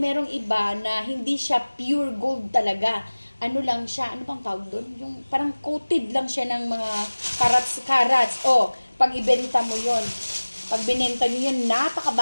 iba na hindi siya pure gold talaga. Ano lang siya, ano bang tawag doon? Yung parang coated lang siya ng mga carats. O, pag ibenta mo yon, pag binenta nyo yun,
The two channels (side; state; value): both; inverted; correlation -1.00